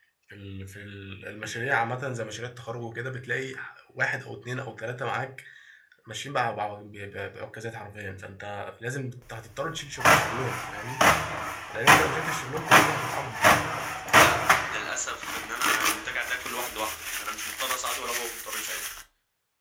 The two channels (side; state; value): both; identical; correlation 1.00